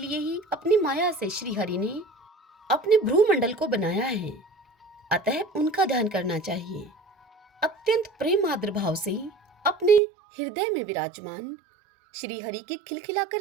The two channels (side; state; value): left; drops out; at 10.0 s